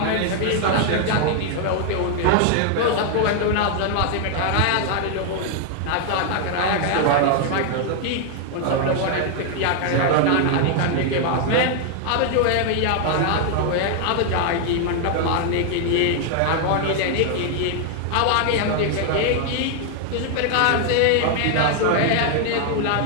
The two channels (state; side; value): different; both; correlation 0.00